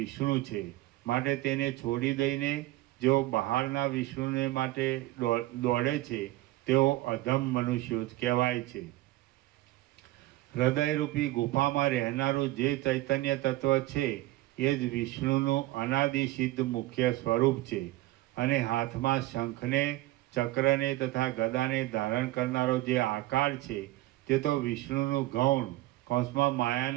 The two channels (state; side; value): quieter; left; 17.6 dB